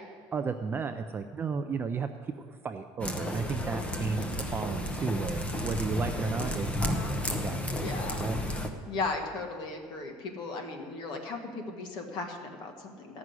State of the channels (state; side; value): normal; both; correlation 0.58